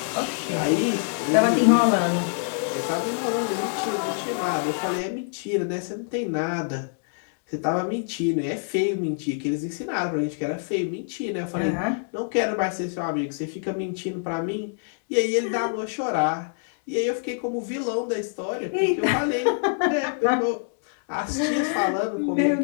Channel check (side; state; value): right; silent; digital silence